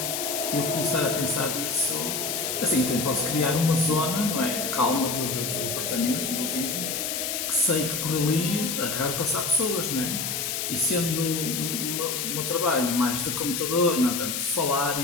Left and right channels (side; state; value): left; noise; hiss, 2 dB below the sound